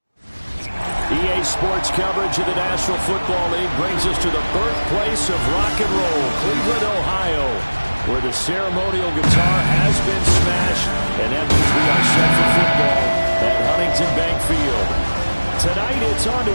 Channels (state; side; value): inverted; both; correlation -1.00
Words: EA Sports coverage of the National Football League brings us to the birthplace of rock and roll, Cleveland, Ohio, where the ceremonial guitar has been smashed, and that means we are set for football at Huntington Bank Field. Tonight, it's on to